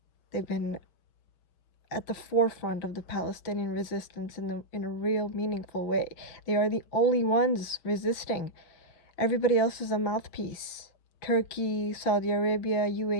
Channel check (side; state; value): right; late; 5.8 ms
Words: They've been at the forefront of the Palestinian resistance in a real meaningful way. They are the only ones resisting. Everybody else is a mouthpiece. Turkey, Saudi Arabia,